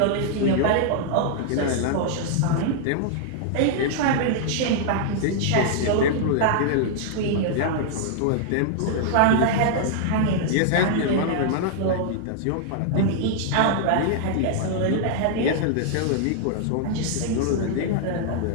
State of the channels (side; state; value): both; different; correlation -0.01